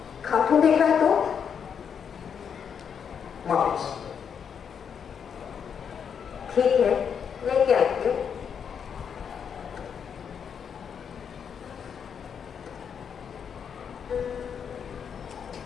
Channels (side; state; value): right; quieter; 7.3 dB